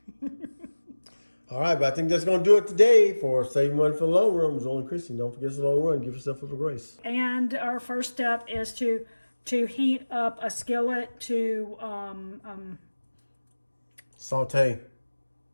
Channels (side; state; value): both; inverted; correlation -1.00